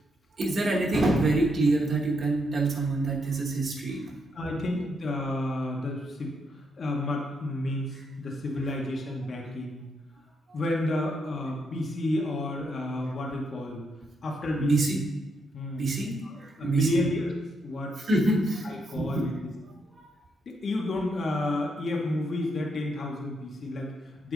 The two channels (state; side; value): normal; both; correlation 0.78